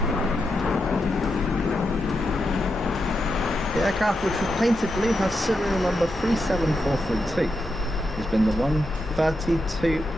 The aircraft, which was painted blue, has serial number 37432. It's been the 132nd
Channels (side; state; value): both; normal; correlation 0.85